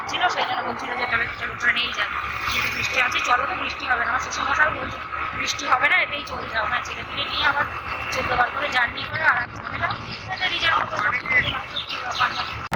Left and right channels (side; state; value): both; identical; correlation 1.00